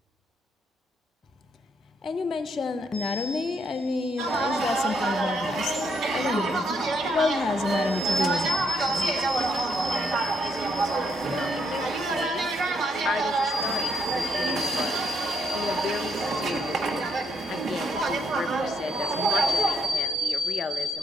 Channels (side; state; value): both; normal; correlation 0.75